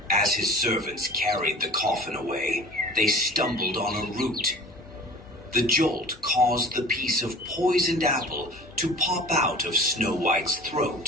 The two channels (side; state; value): both; normal; correlation 0.42